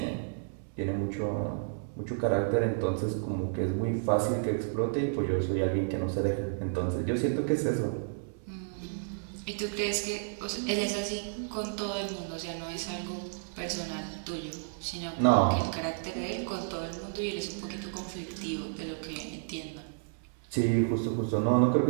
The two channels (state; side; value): silent; left; 57 dB below the other